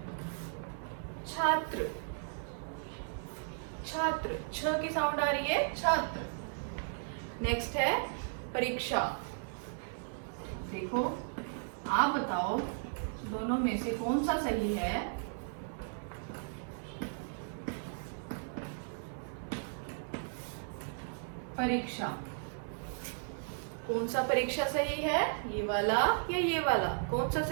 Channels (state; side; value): silent; left; digital silence